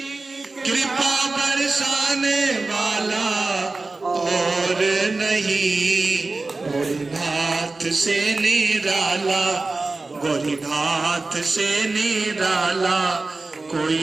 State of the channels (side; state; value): left; quieter; 3.5 dB